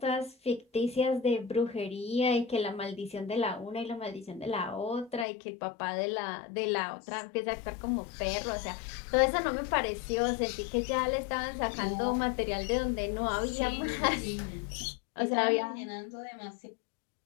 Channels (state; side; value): drops out; right; at 5.2 s